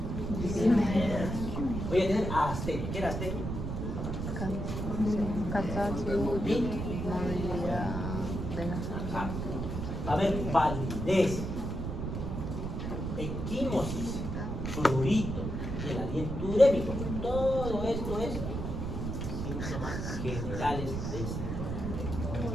Voy a tener astenia. ¿Qué era astenia? Cansancio, movilidad de la sangre. Va a haber validez, equimosis, prurito, y el aliento urémico. Todo esto es síntomas generales del síndrome.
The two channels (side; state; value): right; noise; rumble, 4 dB below the sound